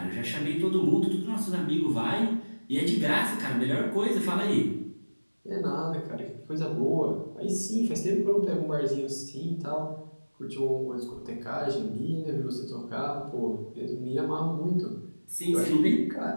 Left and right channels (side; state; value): both; inverted; correlation -1.00